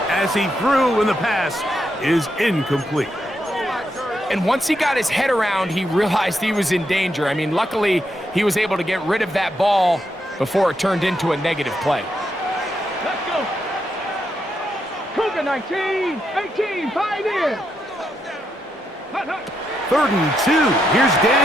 as he threw, and the pass is incomplete. And once he got his head around, he realized he was in danger. I mean, luckily, he was able to get rid of that ball before it turned into a negative play. Let's go. Cougar 19, 18, pioneer. 3rd and 2. Here's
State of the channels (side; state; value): both; normal; correlation 0.81